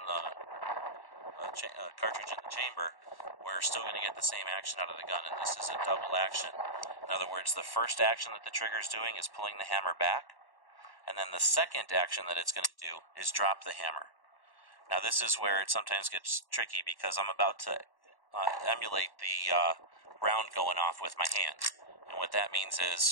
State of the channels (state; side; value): late; right; 1.1 ms